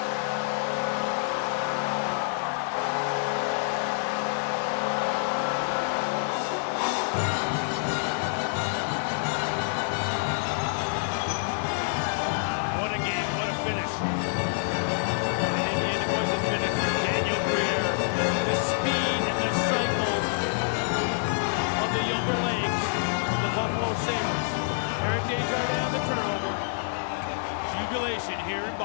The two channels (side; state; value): right; silent; 60 dB below the other